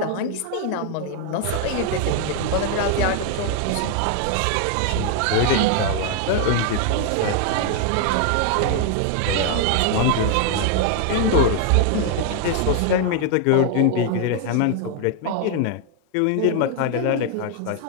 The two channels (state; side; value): different; both; correlation 0.00